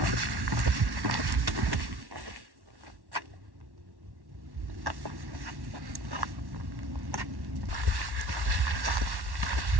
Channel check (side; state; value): left; late; 1.1 ms